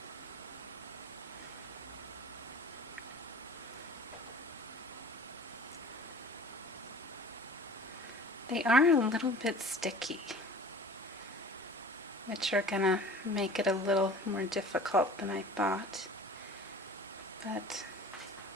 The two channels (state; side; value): normal; both; correlation 0.43